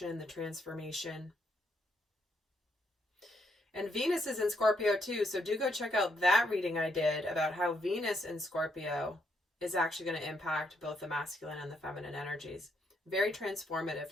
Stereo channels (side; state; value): both; normal; correlation 0.76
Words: the transformation. And Venus is in Scorpio too. So do go check out that reading I did about how Venus in Scorpio is actually going to impact both the masculine and the feminine energies. Very transformative